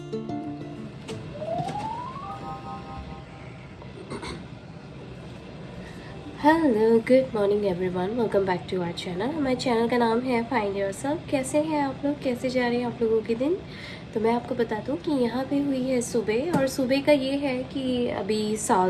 good morning everyone, welcome back to our channel. हमारे channel का नाम है फाइंड योरसेल्फ। कैसे हैं आप लोग, कैसे जा रहे हैं आप लोगों के दिन? तो मैं आपको बता दूं कि यहाँ पे हुई है सुबह, और सुबह का ये है कि अभी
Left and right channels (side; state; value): both; identical; correlation 1.00